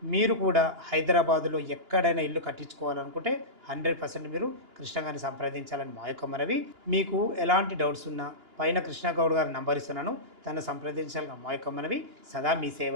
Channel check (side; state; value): left; late; 2.9 ms